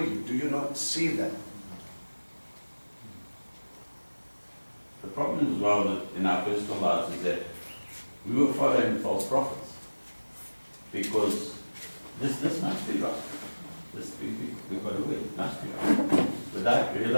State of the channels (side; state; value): both; inverted; correlation -1.00